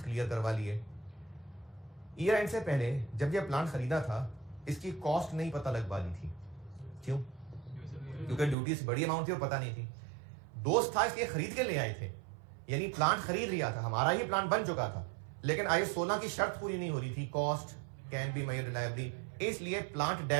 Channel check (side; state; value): left; drops out; at 8.6 s